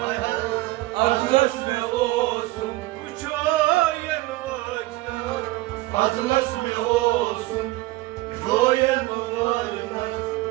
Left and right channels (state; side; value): quieter; left; 19.2 dB